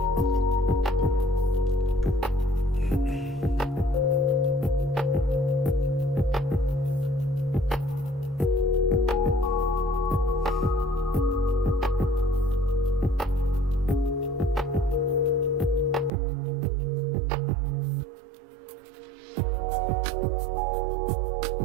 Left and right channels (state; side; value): drops out; left; at 16.1 s